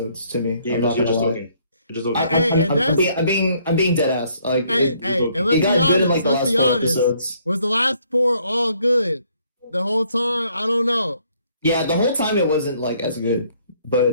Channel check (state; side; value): inverted; both; correlation -0.66